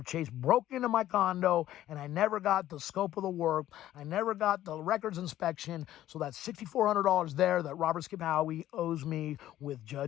Chase broke into my condo, and I never got the scope of the work. I never got the records inspection. So that's $6,400 there that Robert Skip Howie owes me with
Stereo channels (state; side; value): quieter; right; 13.3 dB